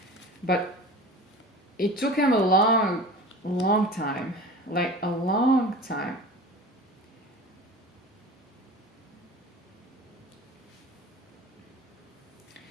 but it took him a long time, like a long time.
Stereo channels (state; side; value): normal; both; correlation 0.37